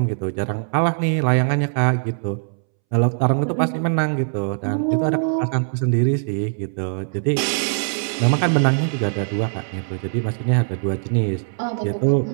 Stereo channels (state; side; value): silent; left; 65 dB below the other